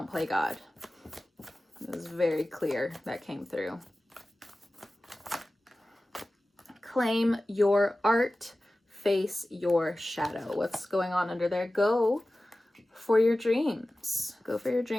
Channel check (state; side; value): normal; both; correlation 0.96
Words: play God. It was very clear that came through. Claim your art, face your shadow. What's going on under there? Go for your dreams. Go for your